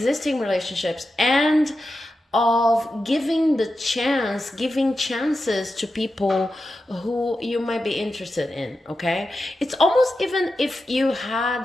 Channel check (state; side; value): normal; both; correlation 0.91